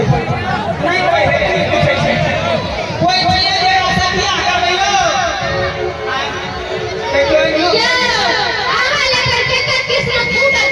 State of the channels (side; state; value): both; identical; correlation 1.00